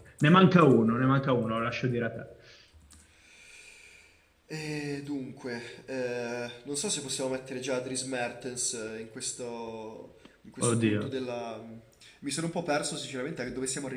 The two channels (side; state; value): both; identical; correlation 1.00